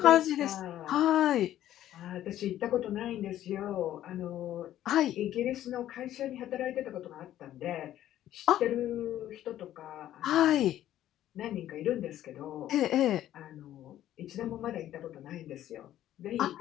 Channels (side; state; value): right; quieter; 12.6 dB